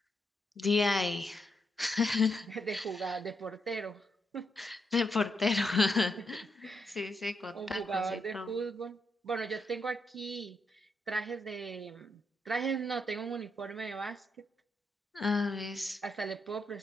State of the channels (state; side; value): normal; both; correlation 0.81